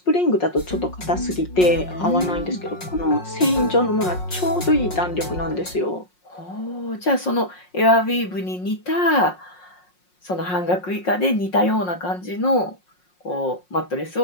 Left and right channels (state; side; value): late; right; 5.5 ms